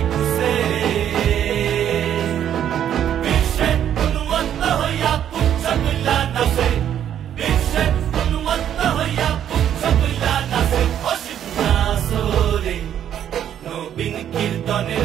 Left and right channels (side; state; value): left; quieter; 10.0 dB